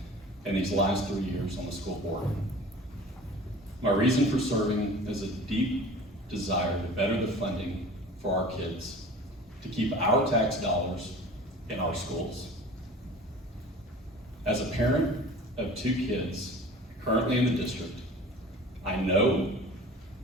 and these last 3 years on the school board. My reason for serving is a deep desire to better the funding for our kids, to keep our tax dollars in our schools. As a parent of 2 kids currently in the district, I know,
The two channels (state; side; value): normal; both; correlation 0.41